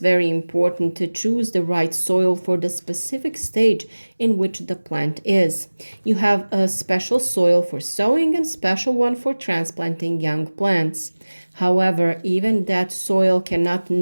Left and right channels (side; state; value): both; inverted; correlation -1.00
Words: important to choose the right soil for the specific stage in which the plant is. You have a special soil for sowing and special one for transplanting young plants. However, even that soil cannot